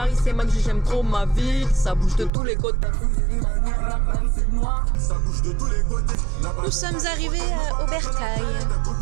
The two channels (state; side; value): drops out; left; at 2.3 s